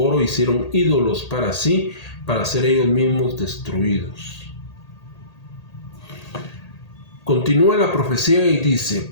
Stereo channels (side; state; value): right; late; 1.8 ms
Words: oro hicieron ídolos para sí, para ser ellos mismos destruidos. Continúa la profecía y dice: